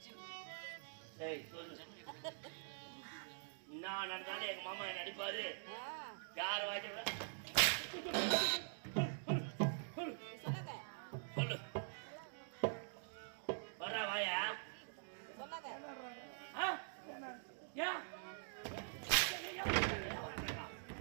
சரி சொல்லு நான் நடந்தாலும் எங்க மாமா என்ன அடிப்பாரு யார் வாய்ச்ச சொல்லு வர்றா வாயா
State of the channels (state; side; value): silent; left; digital silence